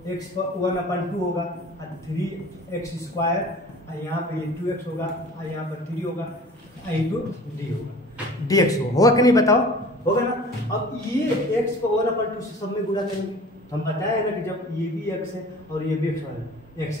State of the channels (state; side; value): normal; both; correlation 0.44